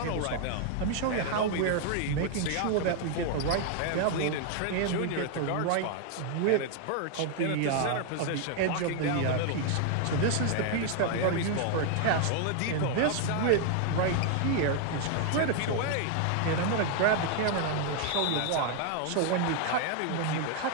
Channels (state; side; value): different; both; correlation 0.00